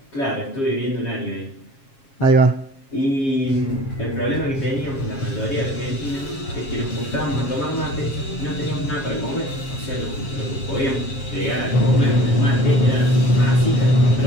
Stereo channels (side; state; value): right; late; 7.4 ms